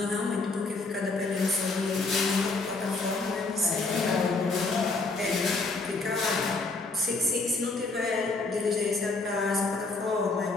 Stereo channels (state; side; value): quieter; right; 3.6 dB